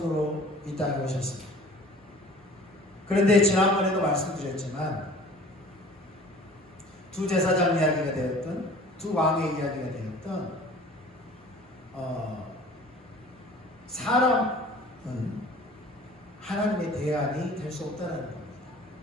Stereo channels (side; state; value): both; normal; correlation 0.47